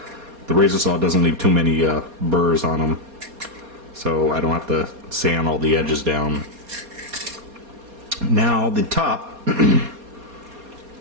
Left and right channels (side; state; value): left; late; 4.2 ms